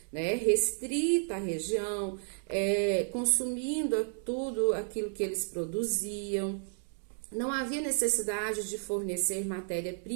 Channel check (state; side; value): silent; left; 56 dB below the other